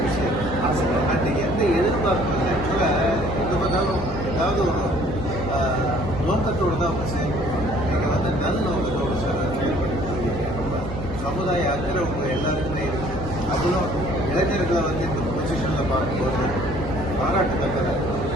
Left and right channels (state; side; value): normal; both; correlation 0.57